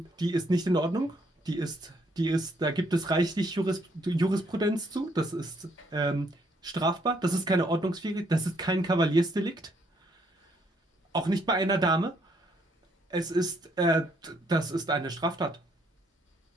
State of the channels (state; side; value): normal; both; correlation 0.70